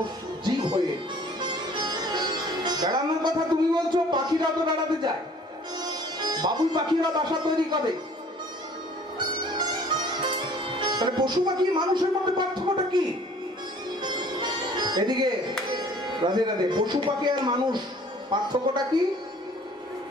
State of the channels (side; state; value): both; normal; correlation 0.53